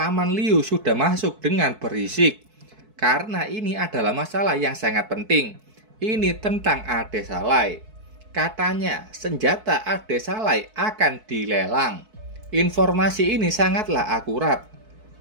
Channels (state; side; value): late; left; 4.6 ms